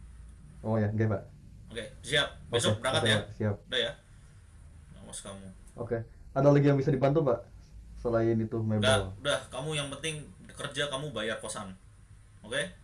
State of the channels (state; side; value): identical; both; correlation 1.00